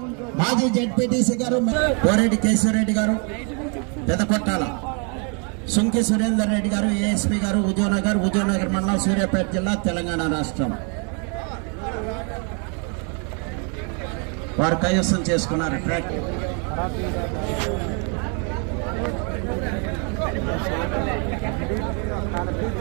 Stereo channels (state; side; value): quieter; left; 37.5 dB